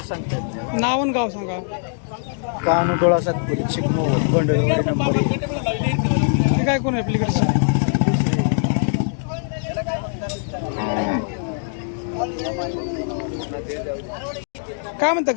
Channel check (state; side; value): silent; right; digital silence